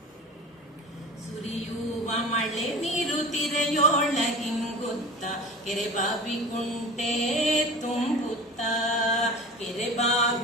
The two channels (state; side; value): normal; both; correlation 0.36